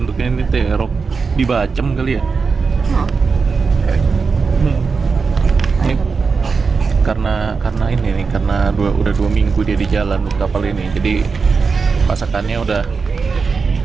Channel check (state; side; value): quieter; left; 4.9 dB